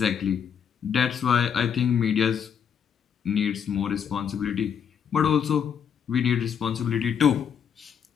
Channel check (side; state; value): right; quieter; 7.7 dB